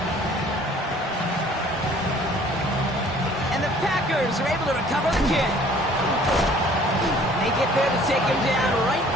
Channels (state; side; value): normal; both; correlation 0.54